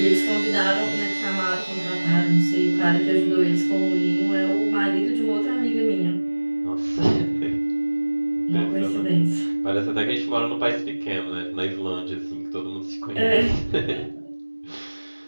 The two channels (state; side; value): inverted; both; correlation -1.00